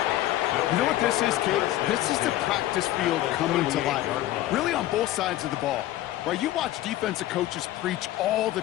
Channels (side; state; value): right; quieter; 14.7 dB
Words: Kate, this is the practice field coming to life, really on both sides of the ball. Right, you watch defensive coaches preach all the